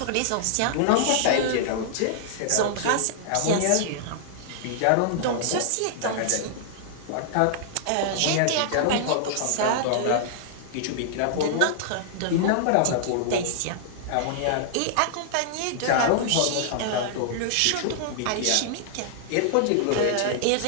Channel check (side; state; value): both; different; correlation -0.01